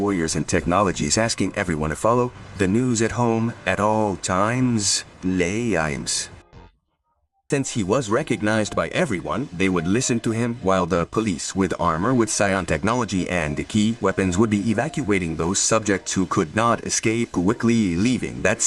and technologies, asking everyone to follow the news at home at all times. Since he was recognized by everyone, they would listen to him while the police with armor with Saiyan technology and key weapons would be evacuating those subjects who could not escape, quickly leaving that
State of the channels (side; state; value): both; identical; correlation 1.00